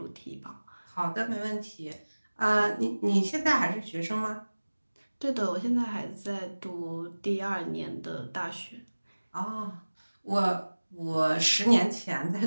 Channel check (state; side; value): inverted; both; correlation -1.00